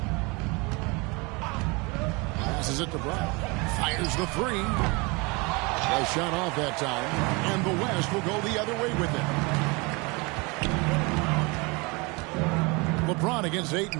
Passes it to Brown. Fires the 3. A shot off that time. And the West will go the other way with it. LeBron against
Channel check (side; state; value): left; quieter; 27.5 dB